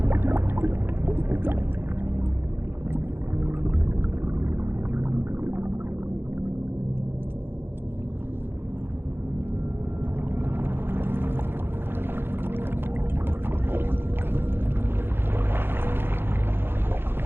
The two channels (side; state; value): left; late; 0.10 ms